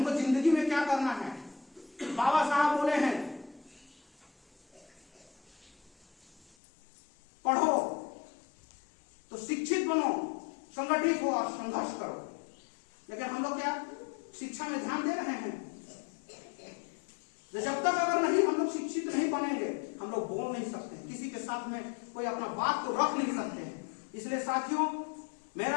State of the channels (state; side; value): drops out; right; at 6.6 s